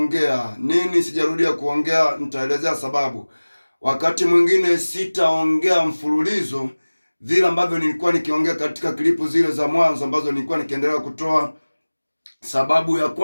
Nini sijarudia kuongea? Nitaelezea sababu. Wakati mwingine sitaongea mfululizo vile ambavyo nilikuwa nikiongea katika klipu zile za mwanzo ambazo nilikuwa nikiendelea kutoa. Sababu ya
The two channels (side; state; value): both; inverted; correlation -1.00